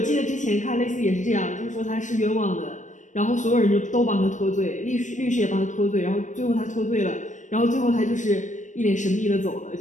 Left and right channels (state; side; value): late; right; 0.36 ms